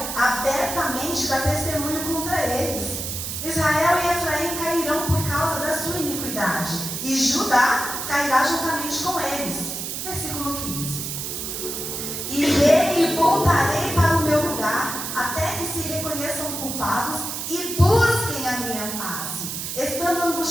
abertamente dá testemunho contra eles. Israel e Efraim cairão por causa da sua iniquidade, e Judá cairá juntamente com eles. Versículo 15. Irei e voltarei para o meu lugar, até que se reconheçam culpados e busquem a minha face. Estando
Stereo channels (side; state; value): right; noise; hiss, 5 dB below the sound